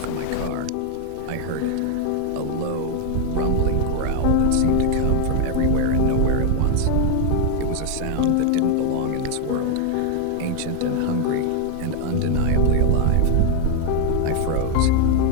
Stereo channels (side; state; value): both; different; correlation 0.00